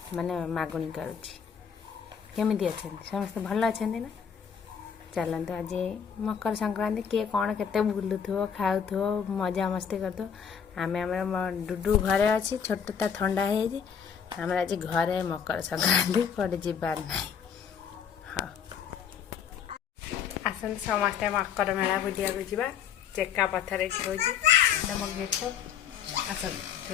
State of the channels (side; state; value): right; quieter; 7.6 dB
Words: माने मागुणी करुँच। केमी अच्छा समस्त भल अच्छा ना। चलते आज मकर संक्रांति किए कौन केते बुलुथो खाऊ मजा मस्ती करथो। आम डुडू घरे अच्छी छोटा ठंडा है आम आज घरे मकर संक्रांति कड़े जीवार ना। हाँ आसते समस्ते मकर मेला बुलिया जा चेका पथर हो गेट आस